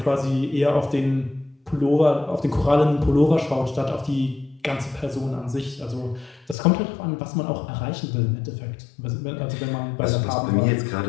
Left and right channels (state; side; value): drops out; right; at 6.6 s